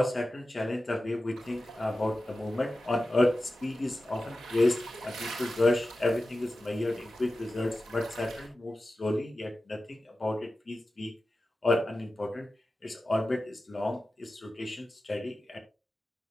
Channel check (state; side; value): normal; both; correlation 0.94